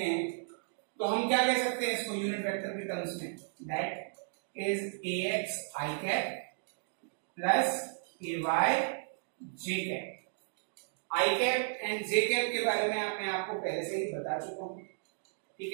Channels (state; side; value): silent; left; digital silence